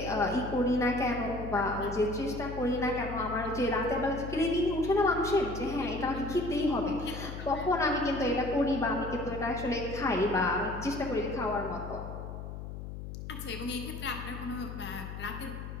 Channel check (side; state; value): left; noise; hum, 8 dB below the sound